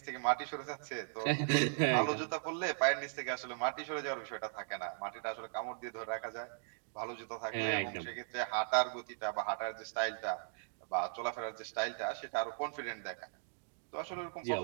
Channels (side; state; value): left; silent; digital silence